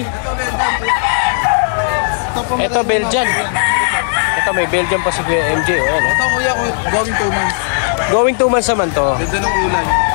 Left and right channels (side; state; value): right; silent; digital silence